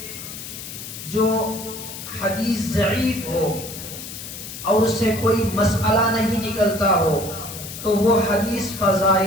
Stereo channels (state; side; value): noise; left; hiss, 10 dB below the sound